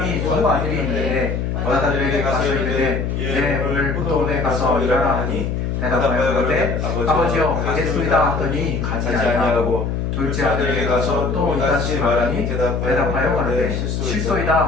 두 아들이 있는데 어다들에게 가서 이르되 내 오늘 포도원에 가서 일하라 하니 대답하여 그러되 아버지여 가겠소이다 하더니 가지 아니하고 둘째 아들에게 가서 또 이같이 말하니 대답하여 가로되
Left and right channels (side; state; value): left; noise; hum, 1 dB below the sound